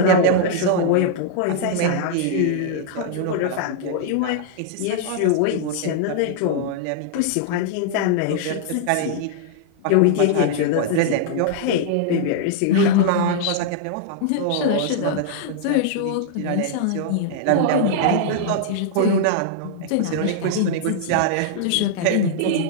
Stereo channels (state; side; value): different; both; correlation -0.01